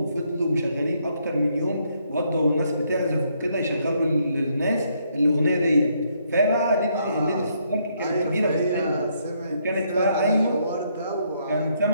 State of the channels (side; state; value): both; inverted; correlation -0.73